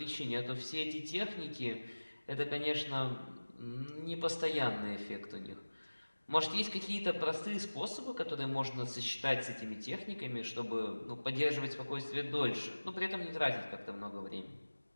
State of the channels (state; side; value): inverted; both; correlation -1.00